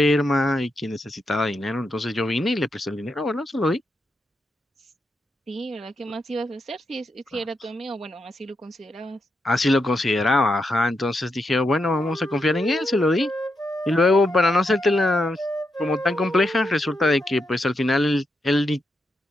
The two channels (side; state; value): both; normal; correlation 0.84